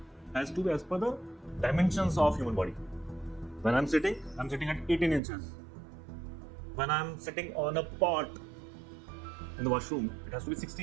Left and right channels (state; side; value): drops out; left; at 5.2 s